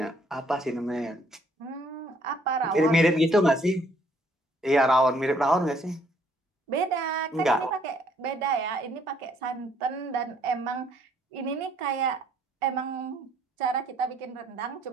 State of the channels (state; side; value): normal; both; correlation 0.65